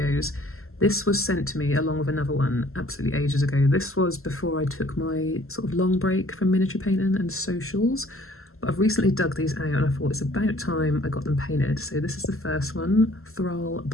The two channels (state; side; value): late; right; 0.62 ms